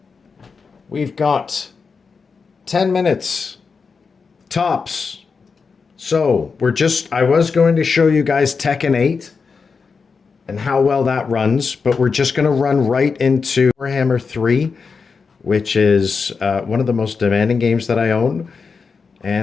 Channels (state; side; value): quieter; right; 5.1 dB